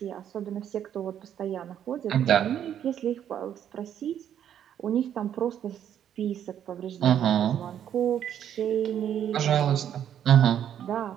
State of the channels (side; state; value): left; quieter; 9.8 dB